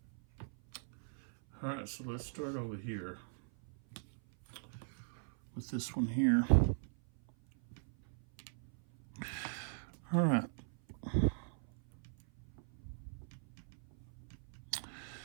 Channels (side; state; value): left; silent; 51 dB below the other